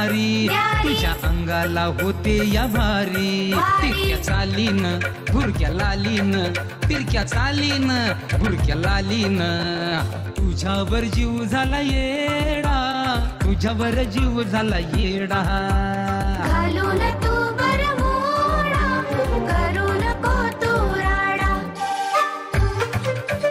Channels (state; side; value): identical; both; correlation 1.00